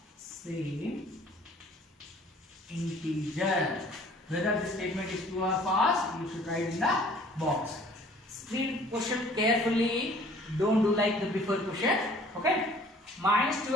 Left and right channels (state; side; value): normal; both; correlation 0.53